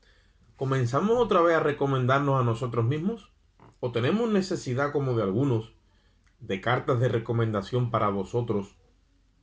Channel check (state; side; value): identical; both; correlation 1.00